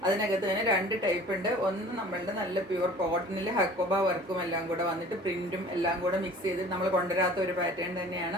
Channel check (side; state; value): both; normal; correlation 0.46